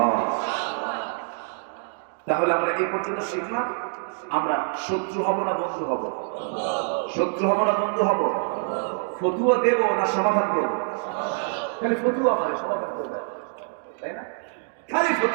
তাহলে আমরা এই পর্যন্ত শিখলাম, আমরা শত্রু হব না বন্ধু হব? শত্রু হব না বন্ধু হব? ফতুয়া দেব না সমাধান করব? খালি ফতুয়া মানে সমাধান করবে, তাই না? খালি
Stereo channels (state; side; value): silent; left; 61 dB below the other